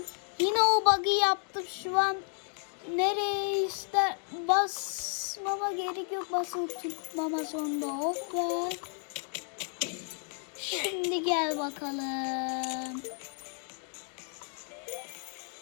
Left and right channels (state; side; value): quieter; right; 36.9 dB